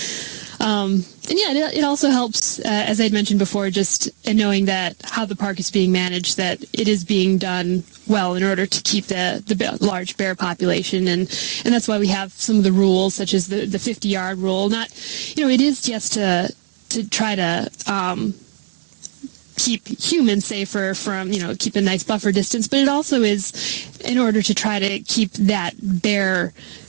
it also helps, as I'd mentioned before, just in knowing that how the park is being managed, that it is being done well in order to keep the large bear population, and that's why we have some of the rules, such as the 50-yard rule. Not, it is just to try to keep humans safer from, keep a nice buffer distance, but it also is in order to try to keep that bear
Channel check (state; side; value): silent; left; digital silence